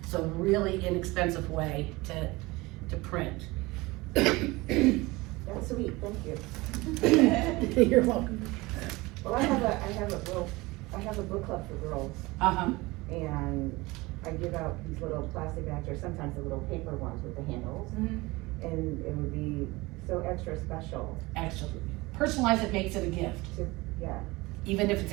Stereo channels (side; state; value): left; quieter; 22.1 dB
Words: so really inexpensive way to print. That's sweet, thank you. You're welcome. Well, I have a book club for girls, and I give out these little plastic bags, or sometimes the little paper ones with the handles, and it would be so extra special. Actually, personalize it, makes it a gift, Yeah, even if it's